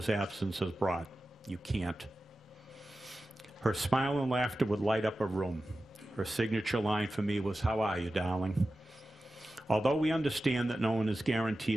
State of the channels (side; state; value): both; normal; correlation 0.94